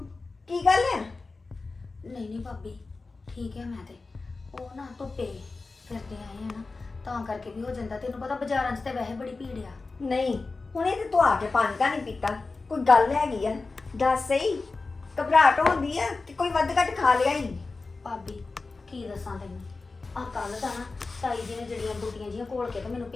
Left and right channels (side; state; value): right; quieter; 3.8 dB